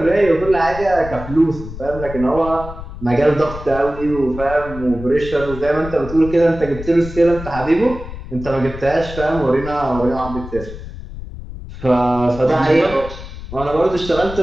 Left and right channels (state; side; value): noise; left; rumble, 12 dB below the sound